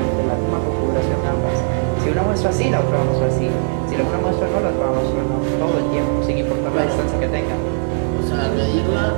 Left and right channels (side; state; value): left; silent; digital silence